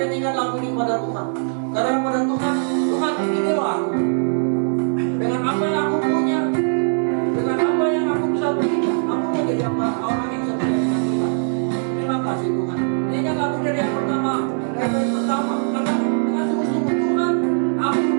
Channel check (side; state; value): left; silent; digital silence